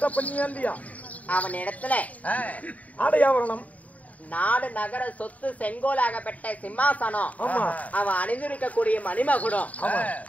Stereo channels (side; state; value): right; late; 0.070 ms